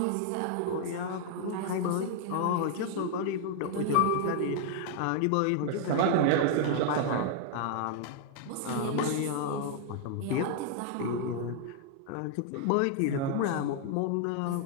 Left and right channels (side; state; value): both; different; correlation 0.00